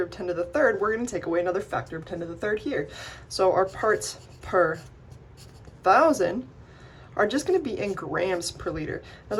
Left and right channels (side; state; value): both; identical; correlation 1.00